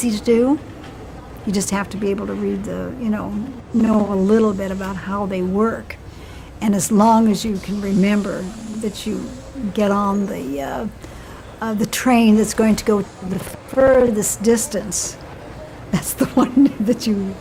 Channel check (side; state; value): both; identical; correlation 1.00